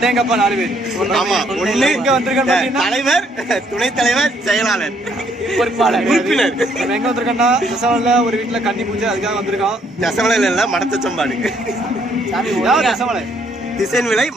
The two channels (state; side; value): normal; both; correlation 0.68